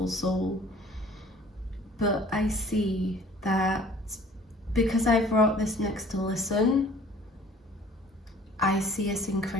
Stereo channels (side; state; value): both; normal; correlation 0.52